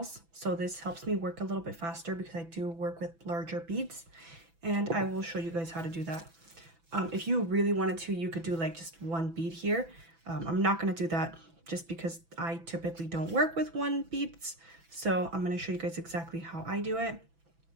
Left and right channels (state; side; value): late; left; 6.0 ms